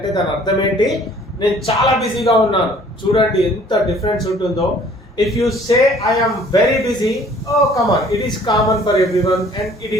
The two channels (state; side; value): normal; both; correlation 0.55